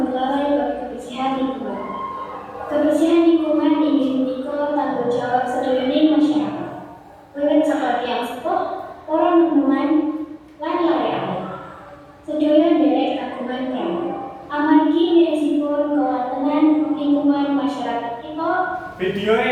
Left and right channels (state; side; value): identical; both; correlation 1.00